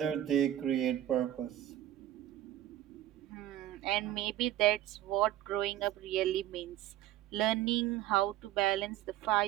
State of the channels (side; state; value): left; quieter; 13.1 dB